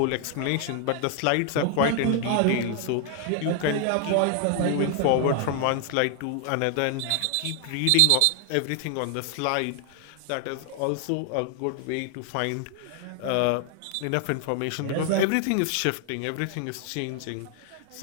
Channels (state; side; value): different; both; correlation 0.00